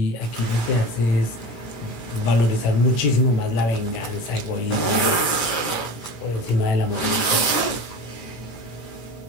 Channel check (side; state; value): right; late; 17 ms